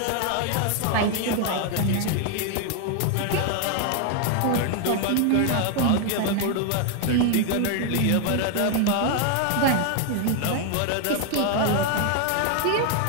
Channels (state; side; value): different; both; correlation 0.00